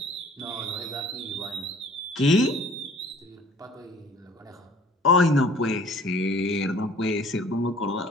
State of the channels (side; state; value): both; normal; correlation 0.51